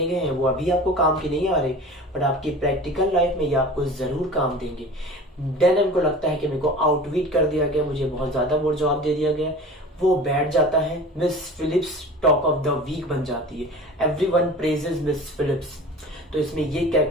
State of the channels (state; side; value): normal; both; correlation 0.38